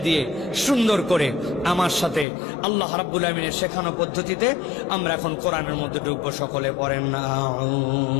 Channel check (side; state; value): right; drops out; at 2.2 s